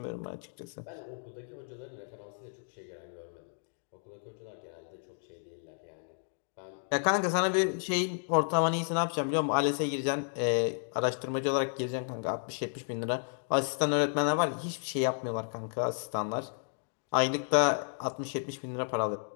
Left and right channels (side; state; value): right; silent; digital silence